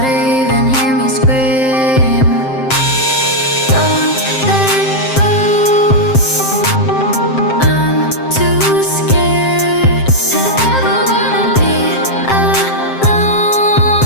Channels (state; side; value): late; right; 7.6 ms